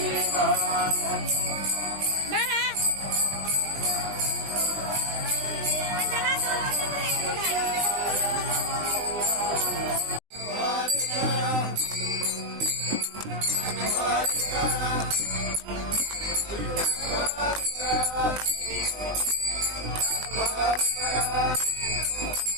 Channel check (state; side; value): late; left; 20 ms